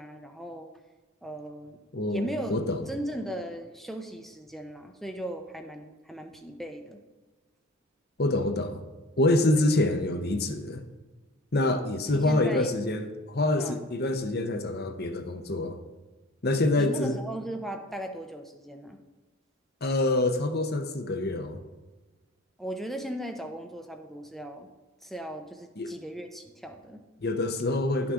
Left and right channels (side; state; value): both; normal; correlation 0.44